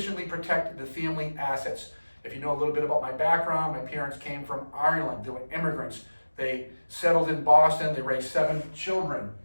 protected the family assets. If you know a little bit about my background, my parents came from Ireland. They were immigrants. They settled in Boston. They raised 7 children,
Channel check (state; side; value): inverted; both; correlation -1.00